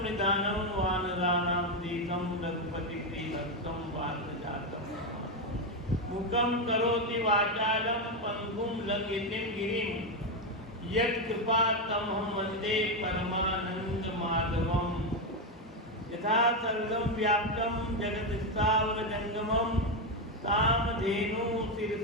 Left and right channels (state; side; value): normal; both; correlation 0.08